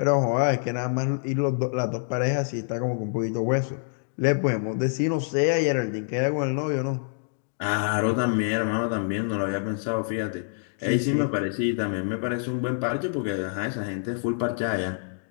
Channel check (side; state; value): right; silent; digital silence